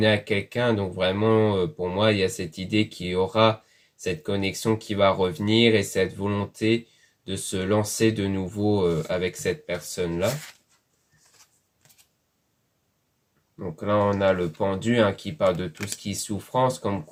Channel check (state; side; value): identical; both; correlation 1.00